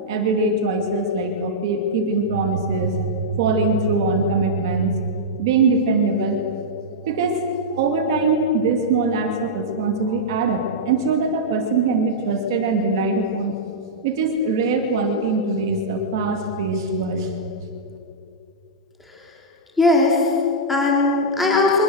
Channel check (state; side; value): normal; both; correlation -0.10